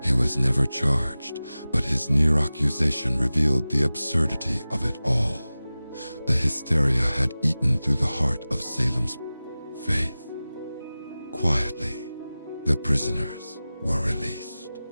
He was never charged, but his near accusation revealed the absurdity of it all. The hysteria had eaten through the heart of Salem's faith. Quietly, the prisoners were released,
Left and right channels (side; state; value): both; inverted; correlation -0.97